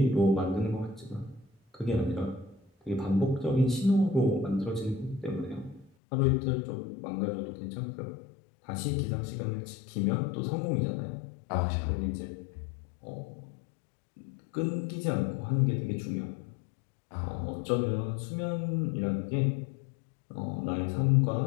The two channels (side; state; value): right; drops out; at 5.9 s